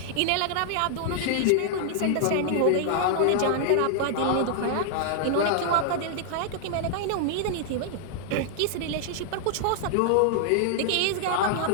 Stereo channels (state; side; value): different; both; correlation -0.01